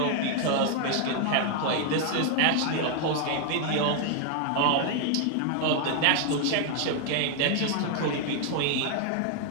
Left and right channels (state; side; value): different; both; correlation 0.00